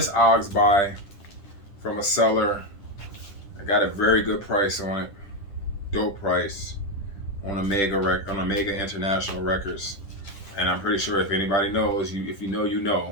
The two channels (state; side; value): late; right; 10 ms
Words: buy from a seller. I got a very good price on it. Dope price on Omega International Records. And I'm pretty sure if anybody knows, if you know, you